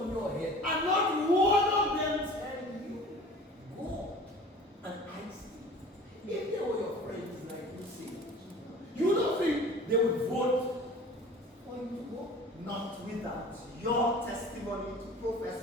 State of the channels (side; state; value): both; normal; correlation 0.43